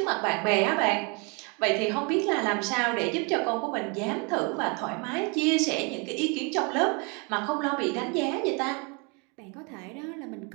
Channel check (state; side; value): quieter; left; 32.6 dB